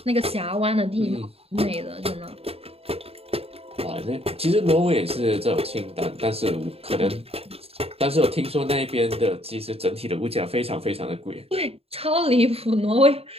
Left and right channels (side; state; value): left; late; 0.29 ms